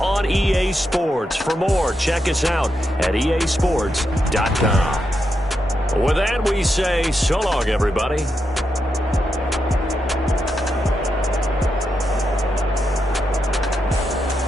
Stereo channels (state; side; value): normal; both; correlation 0.84